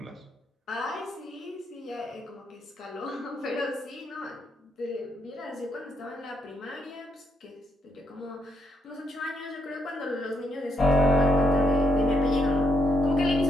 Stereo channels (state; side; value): normal; both; correlation 0.77